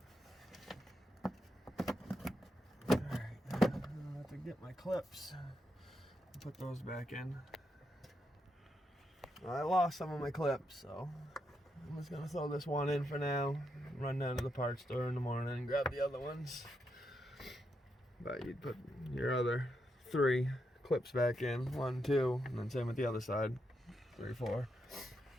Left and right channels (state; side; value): normal; both; correlation 0.82